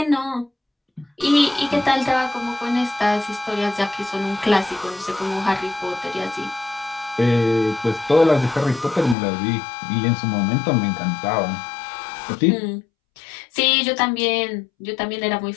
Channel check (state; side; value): drops out; right; at 9.2 s